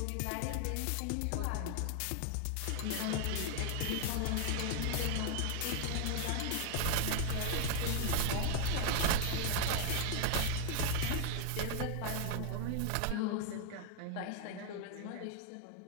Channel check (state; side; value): different; both; correlation 0.00